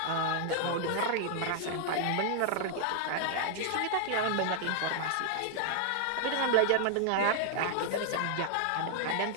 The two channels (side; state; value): both; different; correlation 0.00